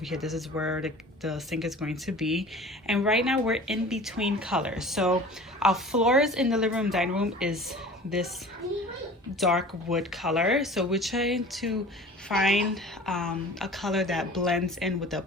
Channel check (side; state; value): both; normal; correlation 0.42